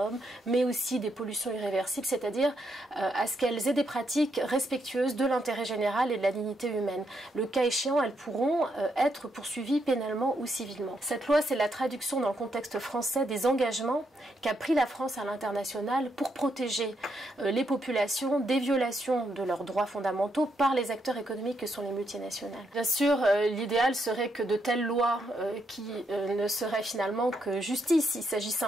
mais aussi des pollutions irréversibles, c'est-à-dire à ce qu'elles aient des pratiques respectueuses de l'intérêt général et de la dignité humaine. Le cas échéant, elles pourront être poursuivies pénalement ou civilement. Cette loi, c'est la traduction dans le contexte français des engagements qu'a pris la France à l'international pour protéger les populations des violations de leurs droits fondamentaux par les acteurs économiques que sont les multinationales. Bien sûr, l'idéal serait que de telles lois qui ne seraient finalement que justice. Il s'agit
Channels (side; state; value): both; normal; correlation 0.78